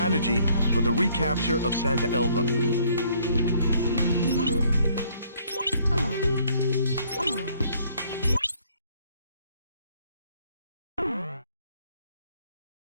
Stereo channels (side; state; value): both; inverted; correlation -0.63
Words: for the recapture of Santa Elva.